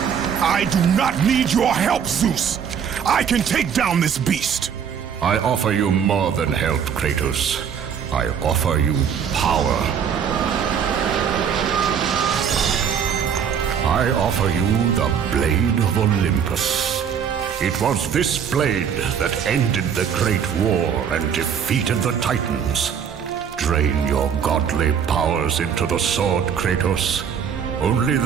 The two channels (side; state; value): left; quieter; 7.7 dB